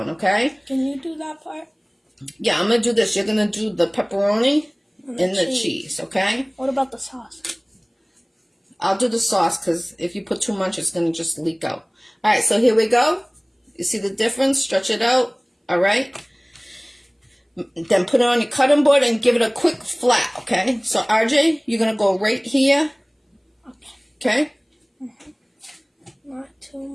okay? Can you do that part? Yeah, I'm going to do this. You're going to do the pepperoni and the cheese, okay? What about the sauce? I'll do the sauce, because if you put too much, it's going to just leak out. All right, so here we go. You see the difference? Stretch it out, all right? Then put it on your cutting board and give it a quick flat, okay? So, RJ, you're going to go right here. Okay? Not too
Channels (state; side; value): identical; both; correlation 1.00